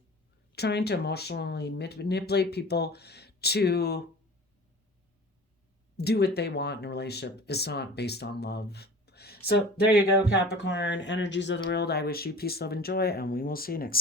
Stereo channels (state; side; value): normal; both; correlation 0.41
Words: trying to emotionally manipulate people to do what they want in a relationship. It's not based on love. So there you go, Capricorn, energies of the world. I wish you peace, love, and joy, and we will see you